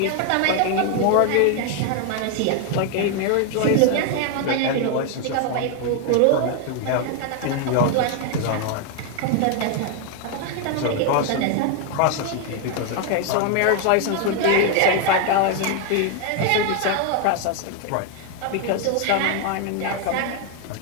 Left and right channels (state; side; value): different; both; correlation 0.01